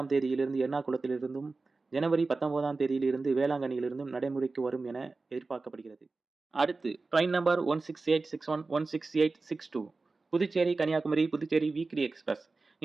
தேதியிலிருந்து எர்ணாகுளத்திலிருந்தும், ஜனவரி 19ஆம் தேதியிலிருந்து வேளாங்கண்ணியிலிருந்தும் நடைமுறைக்கு வரும் என எதிர்பார்க்கப்படுகிறது. அடுத்து train number 16861, 16862 Puducherry Kanyakumari Puducherry weekly express.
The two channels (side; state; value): left; quieter; 3.8 dB